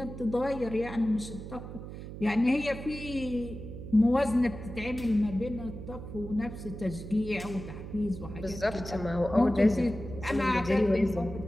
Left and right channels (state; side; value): noise; right; hum, 10 dB below the sound